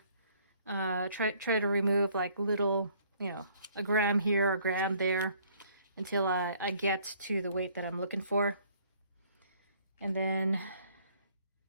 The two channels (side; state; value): both; inverted; correlation -0.61